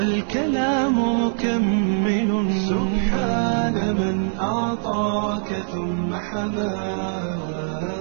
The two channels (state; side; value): silent; left; digital silence